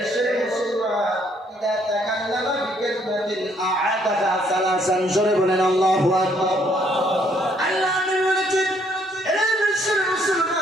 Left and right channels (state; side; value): normal; both; correlation 0.67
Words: মুসলমান, ইদা তাকাল্লামা বিকালিমাতিন আ'আদাহা সালাসান, জোরে বলেন আল্লাহু আকবার। আল্লাহর নবী বলেছেন, হে বিশ্বের